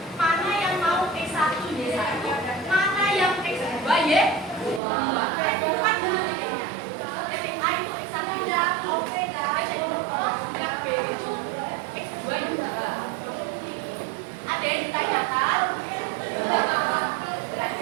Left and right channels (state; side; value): drops out; left; at 4.8 s